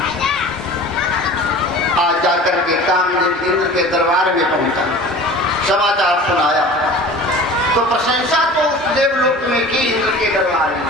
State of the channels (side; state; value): both; normal; correlation 0.40